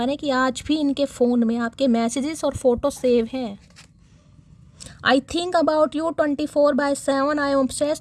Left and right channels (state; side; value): identical; both; correlation 1.00